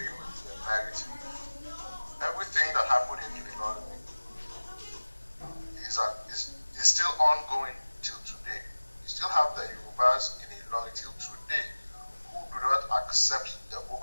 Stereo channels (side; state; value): both; inverted; correlation -1.00